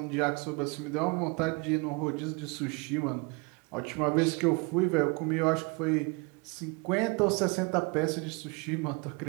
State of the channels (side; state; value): left; quieter; 29.5 dB